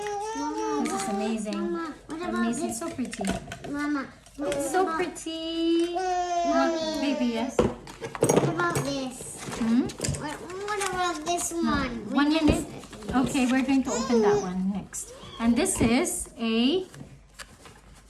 This is amazing. Mama, what about Amazing. this? So pretty. Mama, what It's so about- pretty. Mommy, Baby, yes. what about this? Hmm? What about this one? 1 minute. Okay, we're going to open that one next. And this is a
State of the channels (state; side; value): identical; both; correlation 1.00